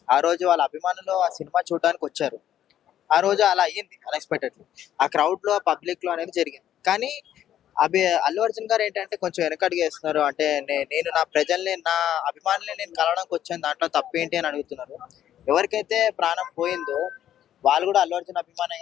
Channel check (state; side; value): quieter; right; 11.1 dB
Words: ఆ రోజు వాళ్ళ అభిమానులు ఆ సినిమా చూడడానికి వచ్చారు. ఆ రోజు అలా అయ్యింది అన్ఎక్స్పెక్టెడ్లీ, ఆ క్రౌడ్ లో, పబ్లిక్ లో అనేది జరిగింది. కానీ అల్లు అర్జున్ గారు ఏంటంటే కొంచెం వెనకడుగు వేస్తున్నారు. అంటే నేను నా ప్రజల్ని, నా అభిమానుల్ని నేను కలవడానికి వచ్చాను, దాంట్లో తప్పేంటి అని అడుగుతున్నారు. ఎవరికైతే ప్రాణం పోయిందో వాళ్ళు కూడా అల్లు అర్జున్ అభిమానే